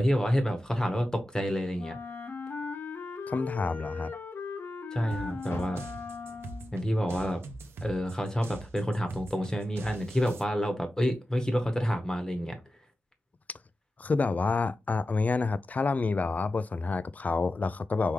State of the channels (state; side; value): normal; both; correlation 0.92